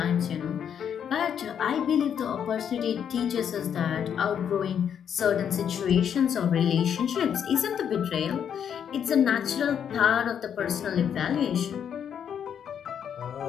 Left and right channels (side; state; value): right; quieter; 8.4 dB